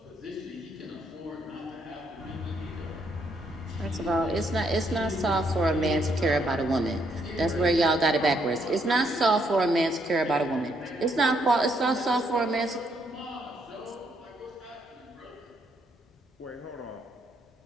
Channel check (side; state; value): both; normal; correlation 0.73